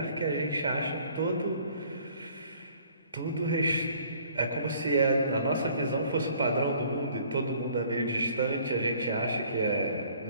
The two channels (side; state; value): both; inverted; correlation -0.57